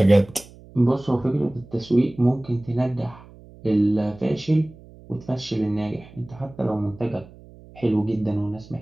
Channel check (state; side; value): noise; right; hum, 21 dB below the sound